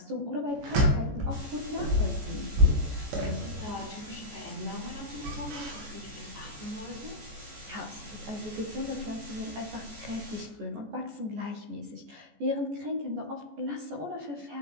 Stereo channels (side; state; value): left; late; 14 ms